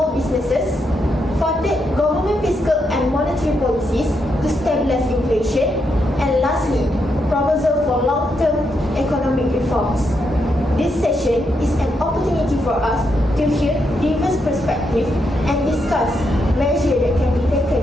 businesses. Fourth, government fiscal and monetary policies to stabilize inflation. And lastly, proposal for long-term economic reforms. This session is an opportunity for us to hear diverse perspectives and discuss measures that can be taken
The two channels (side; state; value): both; normal; correlation 0.81